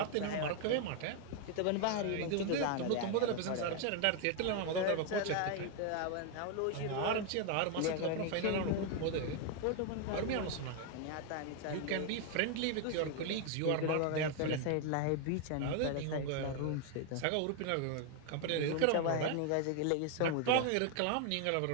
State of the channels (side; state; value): both; different; correlation 0.01